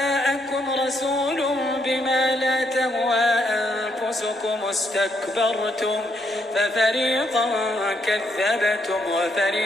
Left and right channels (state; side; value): normal; both; correlation 0.75